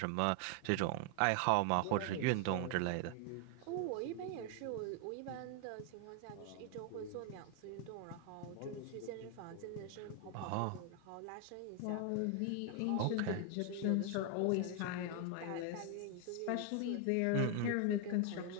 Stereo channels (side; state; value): both; different; correlation 0.01